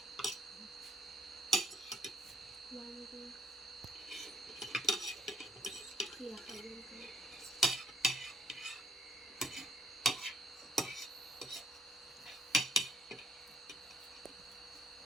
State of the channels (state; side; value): normal; both; correlation 0.63